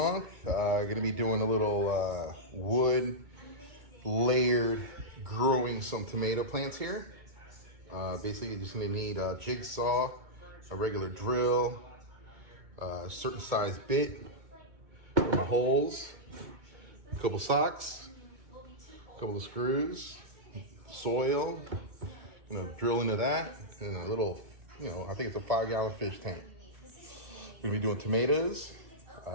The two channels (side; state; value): left; late; 2.2 ms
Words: Going to be doing a little wood layered growing some tomato plants here. Basically, you're just going to need a jigsaw, a regular drill, a certain size bit for my holes, a couple socks, a couple of screws, soil, drill into that, and a little, I think it's a 5-gallon fish tank. We're gonna be doing tomatoes.